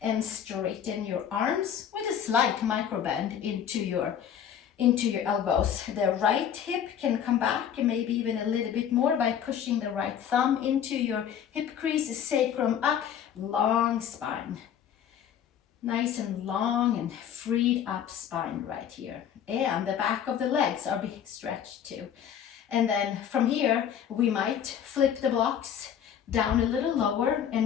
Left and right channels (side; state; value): right; quieter; 9.0 dB